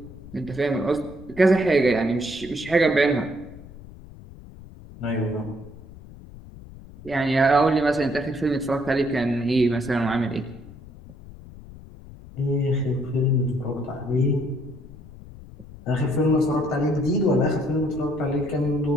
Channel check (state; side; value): noise; left; rumble, 18 dB below the sound